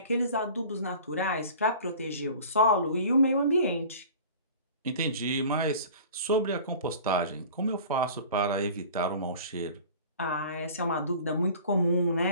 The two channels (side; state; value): both; inverted; correlation -0.43